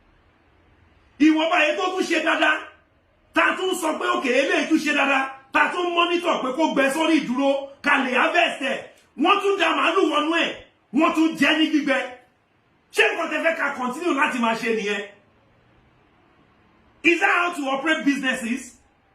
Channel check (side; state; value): both; identical; correlation 1.00